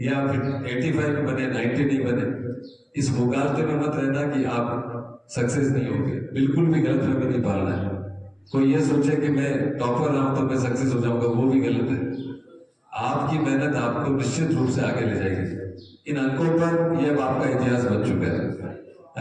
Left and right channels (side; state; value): both; identical; correlation 1.00